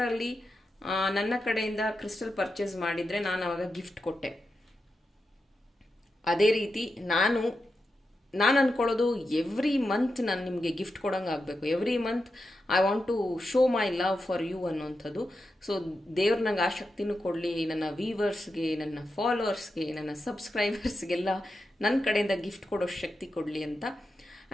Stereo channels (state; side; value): normal; both; correlation 0.88